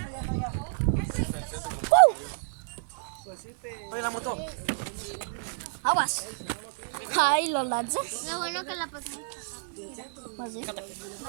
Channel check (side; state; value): left; silent; digital silence